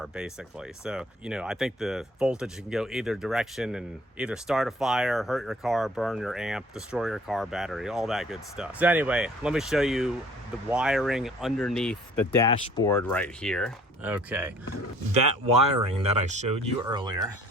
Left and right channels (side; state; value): both; normal; correlation 0.55